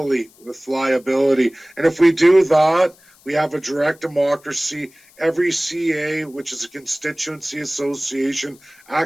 with liability. And if we do that, we have a direct democracy. Every CA, which is a constituency association,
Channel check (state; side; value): noise; left; hiss, 28 dB below the sound